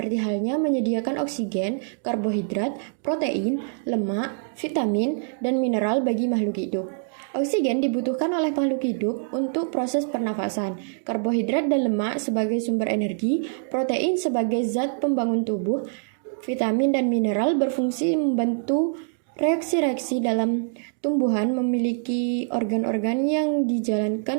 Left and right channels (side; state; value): left; silent; digital silence